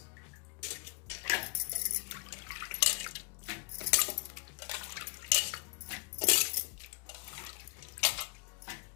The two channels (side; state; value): right; quieter; 33.7 dB